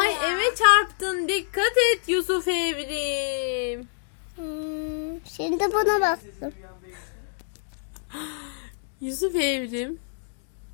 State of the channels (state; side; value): silent; right; digital silence